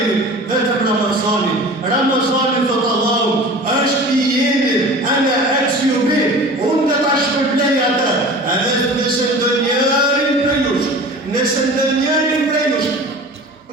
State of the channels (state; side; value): normal; both; correlation 0.39